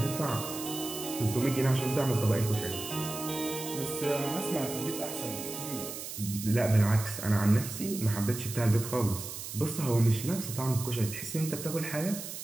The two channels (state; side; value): noise; right; hiss, 8 dB below the sound